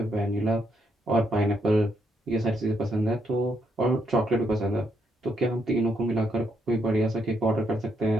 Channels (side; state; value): both; normal; correlation 0.76